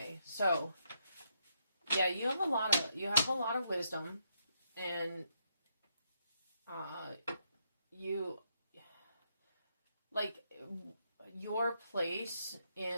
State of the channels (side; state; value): both; inverted; correlation -0.77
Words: so yeah, you have a lot of wisdom, and you your place